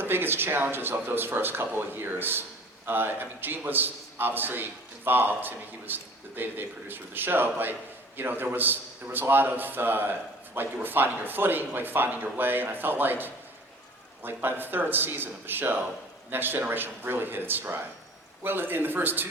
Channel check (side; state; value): both; normal; correlation 0.47